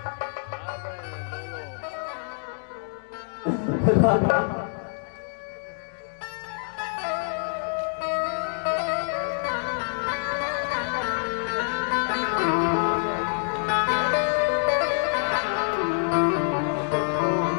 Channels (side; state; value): right; silent; digital silence